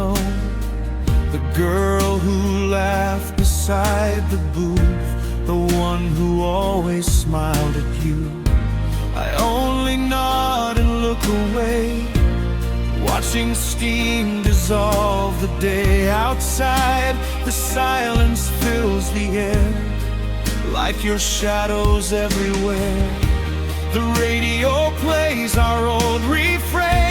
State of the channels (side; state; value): both; identical; correlation 1.00